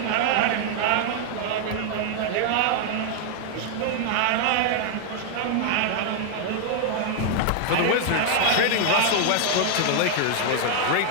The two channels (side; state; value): both; different; correlation 0.00